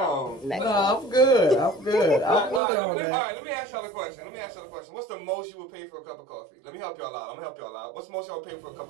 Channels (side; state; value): left; drops out; at 2.6 s